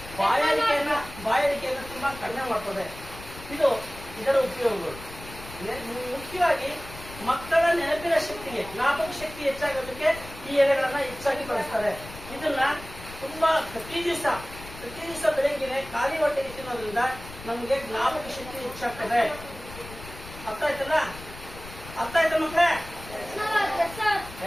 ಬಾಯಾರಿಕೆಯನ್ನು ತುಂಬಾ ಕಡಿಮೆ ಮಾಡ್ತದೆ. ಇದರ ಉಪಯೋಗಗಳು. ಮುಖ್ಯವಾಗಿ ಮಕ್ಕಳ ನೆನಪಿನ ಶಕ್ತಿಗೆ, ಜ್ಞಾಪಕ ಶಕ್ತಿ ಹೆಚ್ಚಾಗೋದಕ್ಕೆ ಈ ಎಲೆಗಳನ್ನ ಹೆಚ್ಚಾಗಿ ಬಳಸ್ತಾರೆ. ಇದನ್ನ ತುಂಬಾ ಪ್ರತಿ ದಿವಸ ಬೆಳಗ್ಗೆ ಖಾಲಿ ಹೊಟ್ಟೆಗೆ ತಿನ್ನೋದ್ರಿಂದ ನಮಗೆ ಜ್ಞಾಪಕ ಶಕ್ತಿ ಹೆಚ್ಚಾಗ್ತದೆ. ಅರ್ಥ ಆಯ್ತಾ ಮಕ್ಕಳೇ?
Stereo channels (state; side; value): noise; left; rumble, 15 dB below the sound